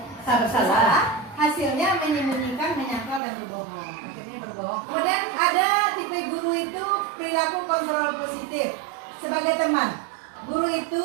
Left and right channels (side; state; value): left; drops out; at 3.2 s